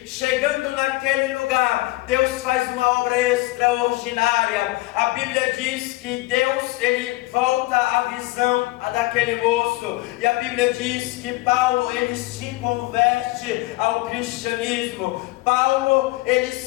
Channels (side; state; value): right; quieter; 20.4 dB